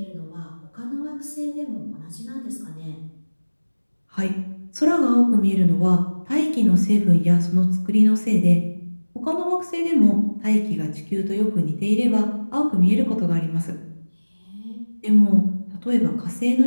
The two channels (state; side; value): inverted; both; correlation -1.00